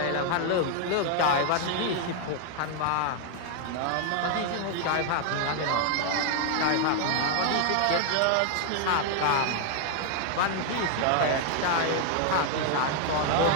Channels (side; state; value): both; different; correlation 0.00